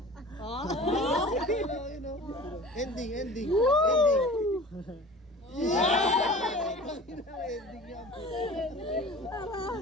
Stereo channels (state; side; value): normal; both; correlation 0.40